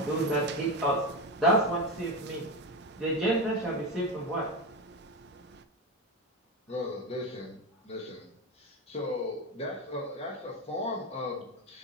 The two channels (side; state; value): both; normal; correlation 0.17